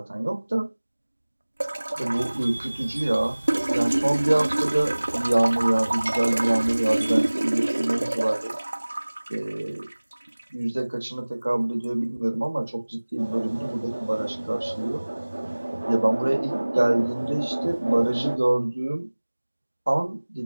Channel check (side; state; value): both; inverted; correlation -1.00